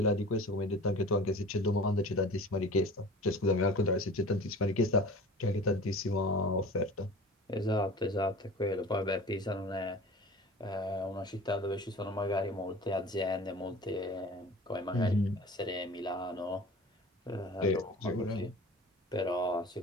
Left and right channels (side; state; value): both; normal; correlation 0.41